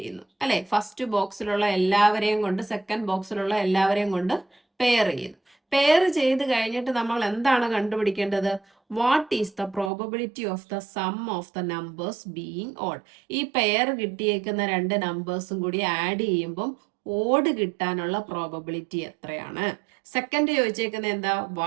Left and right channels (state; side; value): drops out; left; at 9.9 s